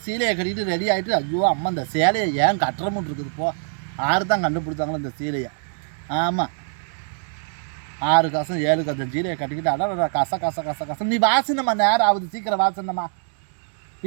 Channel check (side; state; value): left; silent; digital silence